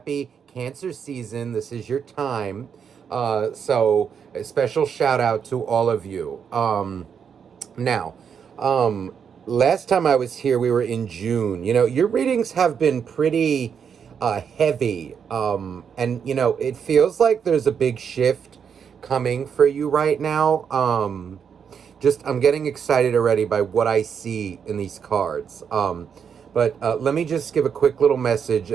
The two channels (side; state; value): left; quieter; 7.2 dB